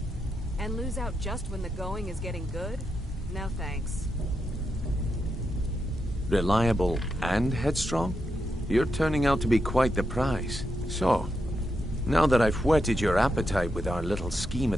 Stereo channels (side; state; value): both; normal; correlation 0.84